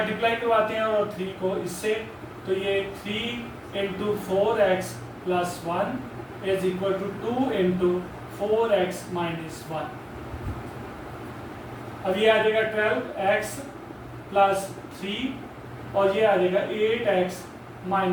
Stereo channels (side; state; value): both; identical; correlation 1.00